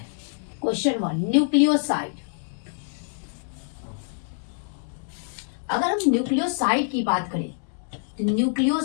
Question 1, nucleoside. अगर हम न्यूक्लियोसाइड की बात करें तो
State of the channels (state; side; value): silent; right; 61 dB below the other